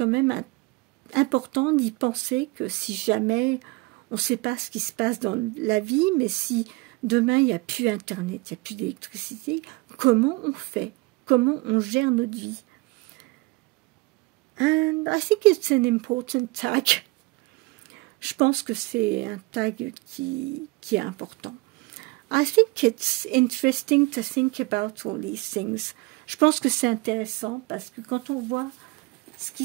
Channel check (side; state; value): left; quieter; 24.2 dB